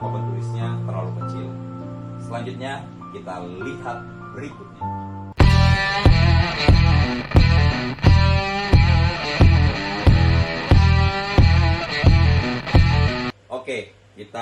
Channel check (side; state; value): both; identical; correlation 1.00